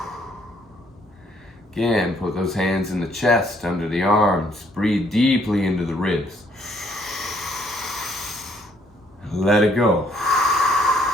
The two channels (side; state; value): both; normal; correlation 0.67